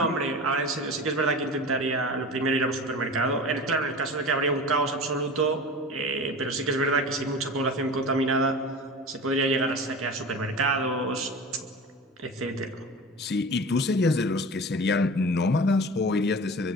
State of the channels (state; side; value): normal; both; correlation 0.34